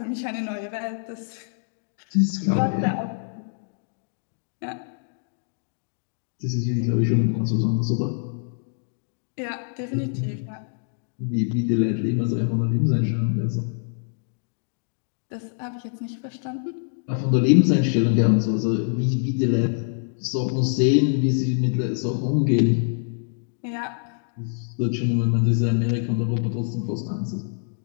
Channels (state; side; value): silent; right; digital silence